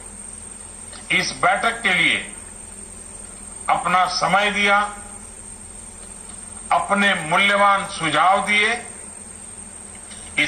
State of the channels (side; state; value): both; identical; correlation 1.00